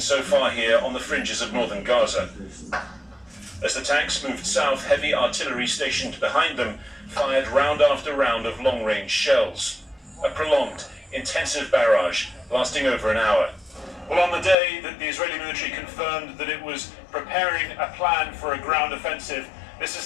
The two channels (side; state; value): right; drops out; at 14.6 s